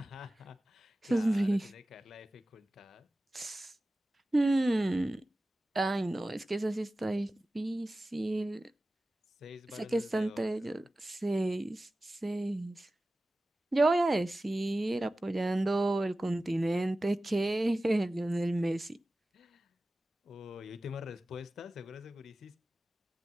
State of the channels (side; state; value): both; normal; correlation 0.96